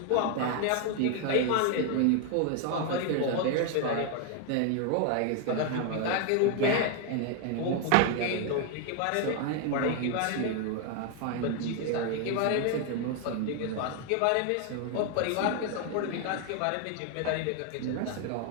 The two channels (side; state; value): both; different; correlation 0.01